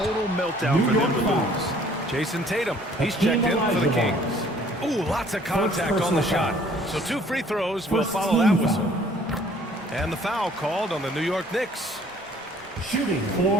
meltdown for them to lose. Jason Tatum, he's checked in for the Kings. Ooh, lots of contact on the shot. So 2 free throws will follow that whistle. And the foul called on the New York Knicks. Shooting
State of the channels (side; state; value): both; normal; correlation 0.57